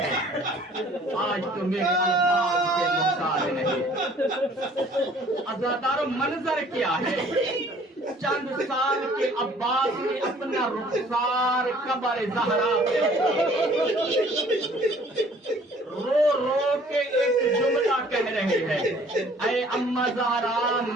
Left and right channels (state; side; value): normal; both; correlation 0.55